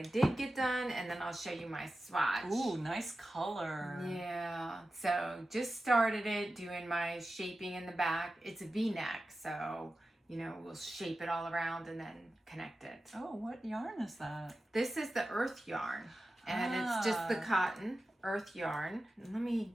did get done, and then I'll show you my swatch. Ooh, nice color. Yeah. So just started it, doing my shaping in the back. It's a V-neck, so, you know, we'll shape it all around and then connect it. Oh, what yarn is that? This is the earth yarn, and it's just the cotton earth yarn. And let me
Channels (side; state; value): both; normal; correlation 0.93